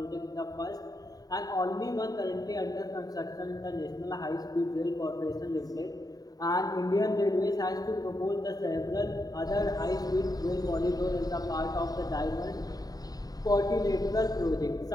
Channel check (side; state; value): right; late; 0.18 ms